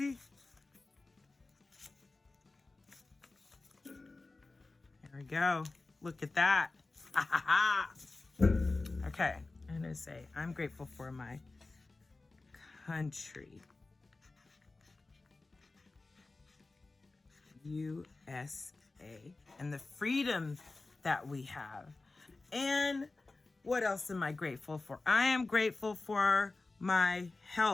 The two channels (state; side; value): quieter; right; 3.4 dB